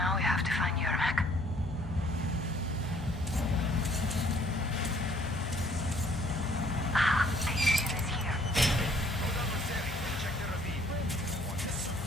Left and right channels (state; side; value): noise; left; hum, 10 dB below the sound